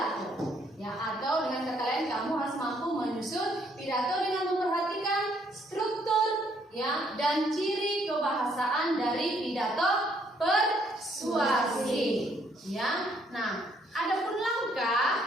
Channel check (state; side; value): normal; both; correlation 0.68